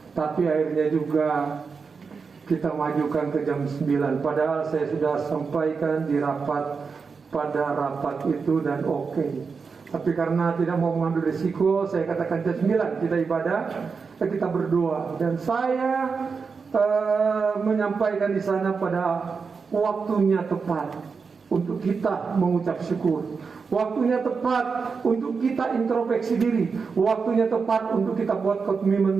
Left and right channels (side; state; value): left; quieter; 5.2 dB